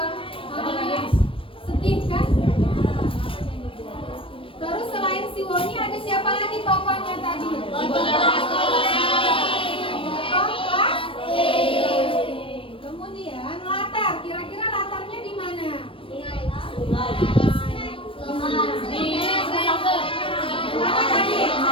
sedih kan? Terus selain si Woni ada siapa lagi tokohnya tadi? Kemudian latar, kira-kira latarnya di mana?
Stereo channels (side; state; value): right; late; 0.25 ms